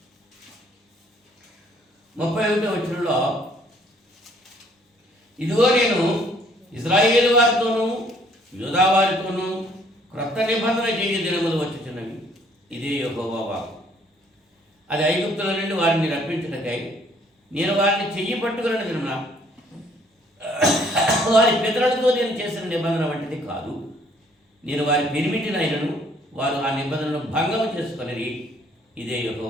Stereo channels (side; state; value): both; normal; correlation 0.62